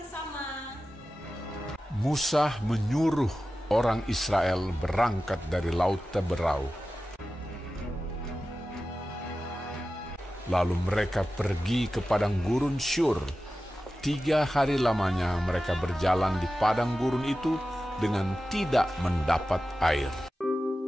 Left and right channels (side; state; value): both; normal; correlation 0.94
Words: Musa menyuruh orang Israel berangkat dari Laut Teberau. Lalu mereka pergi ke padang gurun Syur. 3 hari lamanya mereka berjalan di padang gurun itu dengan tidak mendapat air.